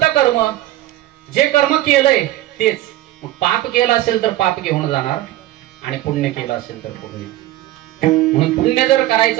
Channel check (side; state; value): left; quieter; 15.3 dB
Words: कर्म? जे कर्म केलंय तेच. मग पाप केलं असेल तर पाप घेऊन जाणार, आणि पुण्य केलं असेल तर पुण्य. म्हणून पुण्य जर